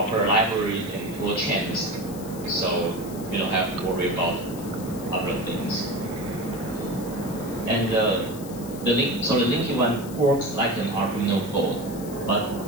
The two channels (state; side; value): noise; left; hiss, 16 dB below the sound